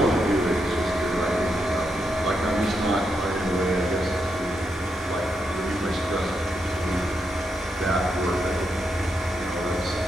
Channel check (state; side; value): normal; both; correlation 0.82